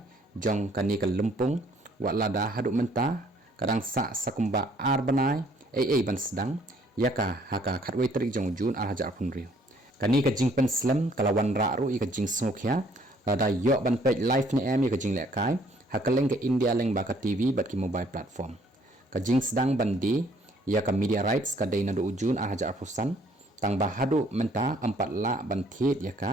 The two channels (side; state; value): both; normal; correlation 0.62